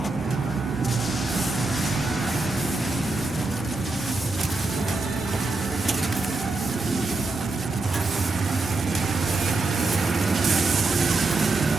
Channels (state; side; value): quieter; left; 3.3 dB